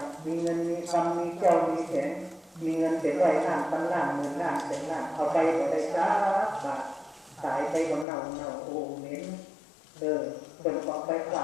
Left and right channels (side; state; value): right; drops out; at 8.1 s